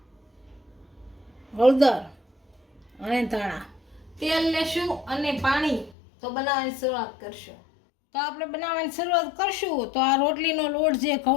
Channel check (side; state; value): right; drops out; at 6.0 s